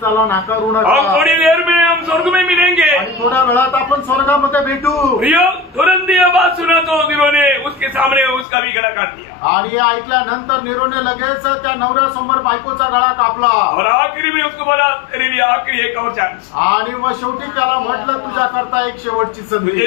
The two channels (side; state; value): right; drops out; at 8.5 s